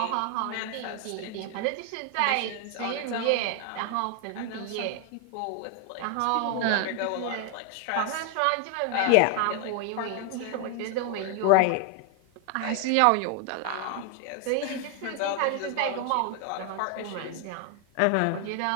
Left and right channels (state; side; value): different; both; correlation 0.00